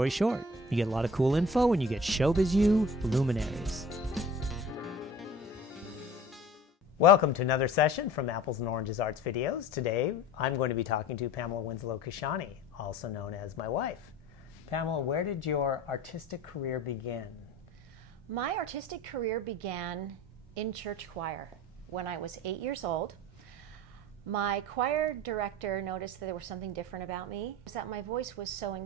short, you get a lot of cool info when you get ShowBizU luminaries. Welcome to another session from Apples and Oranges Arts Videos. Today, I'm going to be talking to Pamela Winslow Kashani, also known as my wife. Pamela, where did your artistic career begin? My artistic career began in church choir when I was 8 years old. My choir director noticed that there was something different about me, that my voice was so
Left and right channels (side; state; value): both; normal; correlation 0.42